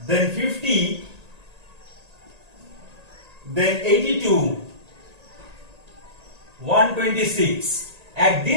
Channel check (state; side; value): late; left; 1.8 ms